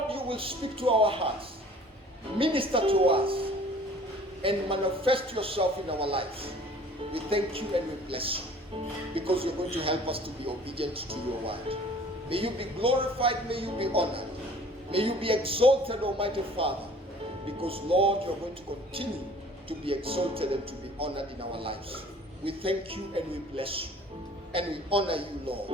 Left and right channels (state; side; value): normal; both; correlation 0.50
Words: you will speak to our hearts, minister to us, and manifest yourself in our lives. We thank you and we bless you, because you're going to help us to be obedient to your word. May you be glorified, may you be honored, may you be exalted, Almighty Father, because, Lord, you're going to continue to be exalted and to be honored in our lives. We thank you and we bless you, and we honor you,